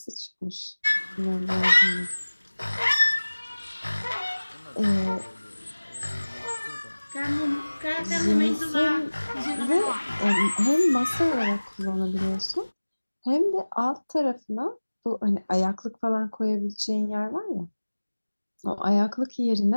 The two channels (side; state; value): both; inverted; correlation -1.00